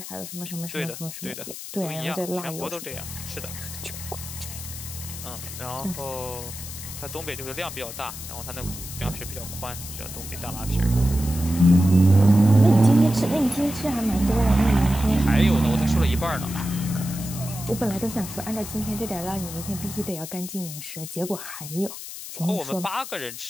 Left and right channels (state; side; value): noise; left; hiss, 10 dB below the sound